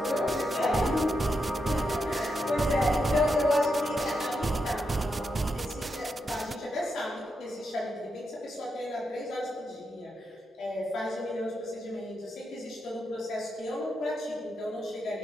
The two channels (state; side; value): normal; both; correlation 0.84